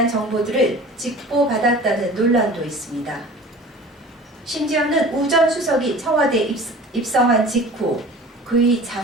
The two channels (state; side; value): normal; both; correlation 0.42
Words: 정보들을 직보받았다는 논란도 있습니다. 심지어는 우 전 수석이 청와대에 입성한 직후 그의